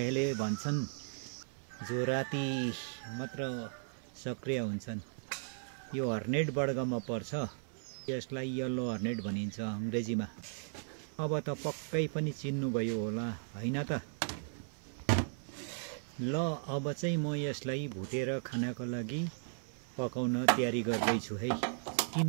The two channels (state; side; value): silent; left; 54 dB below the other